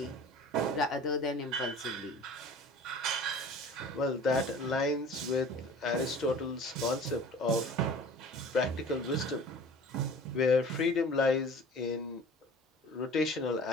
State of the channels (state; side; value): normal; both; correlation 0.43